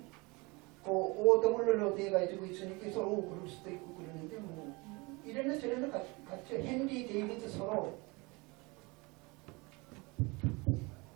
그 오더물로 되어 가지고 있으니까 서로 그럴 수도 있고 그러는데 뭐 이래는 저래는 같죠. 헨리 데이비드 서로.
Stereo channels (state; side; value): quieter; left; 26.3 dB